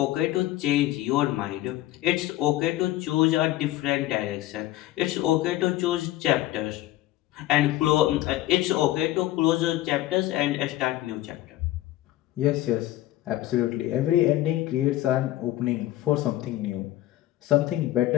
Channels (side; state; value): right; quieter; 15.5 dB